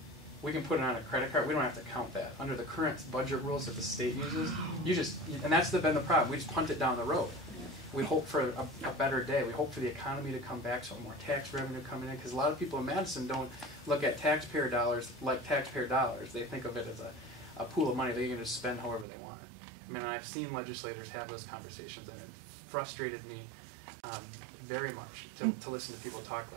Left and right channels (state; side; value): drops out; left; at 19.1 s